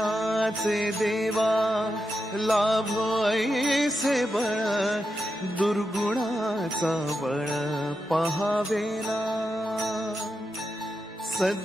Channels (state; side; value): normal; both; correlation 0.87